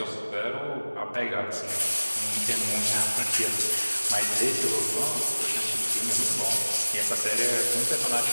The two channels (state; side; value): inverted; both; correlation -1.00